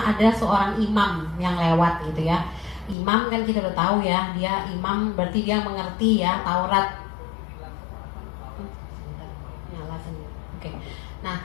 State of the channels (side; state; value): right; drops out; at 3.0 s